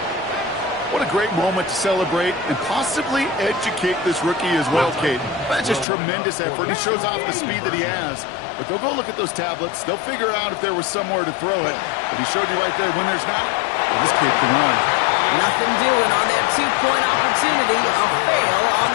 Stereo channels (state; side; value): drops out; right; at 5.9 s